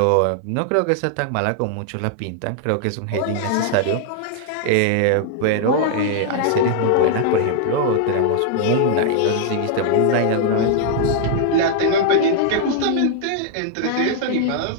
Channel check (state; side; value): different; both; correlation -0.01